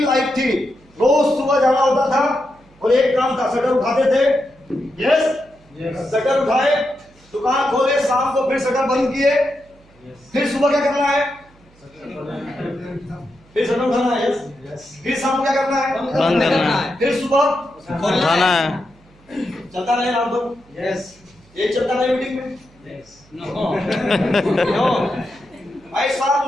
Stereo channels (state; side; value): noise; right; hum, 29 dB below the sound